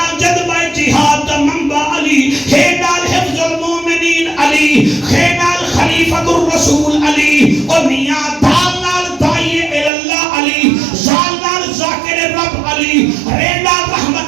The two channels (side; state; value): left; drops out; at 9.9 s